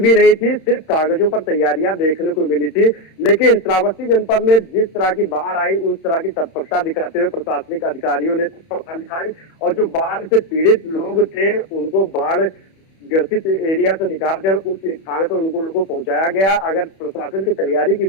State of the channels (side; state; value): right; late; 31 ms